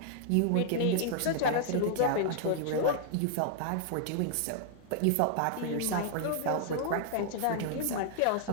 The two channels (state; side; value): different; both; correlation -0.01